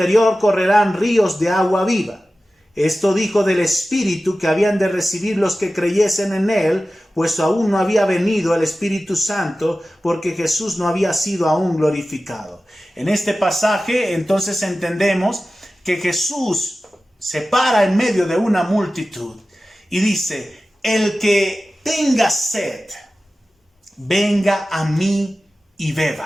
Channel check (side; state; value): both; normal; correlation 0.95